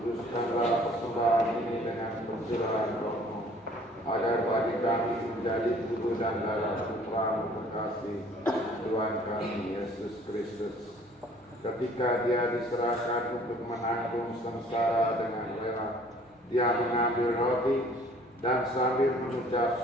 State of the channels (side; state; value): both; normal; correlation 0.55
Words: persembahan ini dengan pencurahan Roh-Mu, agar bagi kami menjadi tubuh dan darah Putra-Mu terkasih, Tuhan kami Yesus Kristus. Ketika Dia diserahkan untuk menanggung sengsara dengan rela, Dia mengambil roti dan sambil